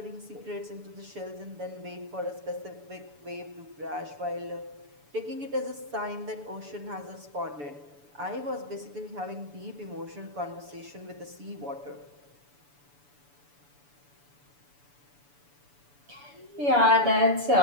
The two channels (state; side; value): late; left; 6.9 ms